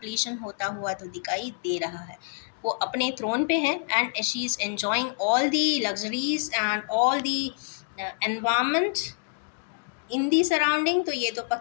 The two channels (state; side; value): silent; right; digital silence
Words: होता हुआ तो दिखाई दे रहा है। वो अपने थ्रोन पे हैं and she is enjoying all the luxuries and all the environment in the surrounding. तो ये तो